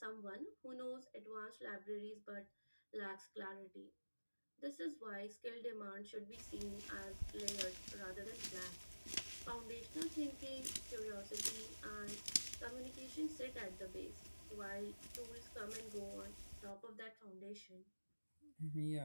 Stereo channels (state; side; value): inverted; both; correlation -1.00